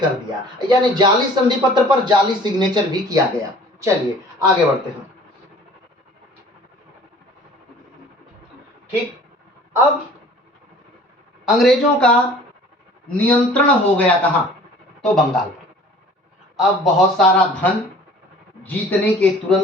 दिया, यानी जाली संधि पत्र पर जाली सिग्नेचर भी किया गया। चलिए आगे बढ़ते हैं। ठीक, अब अंग्रेजों का नियंत्रण हो गया कहां, तो बंगाल पर। अब बहुत सारा धन जीतने के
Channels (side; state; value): both; normal; correlation 0.49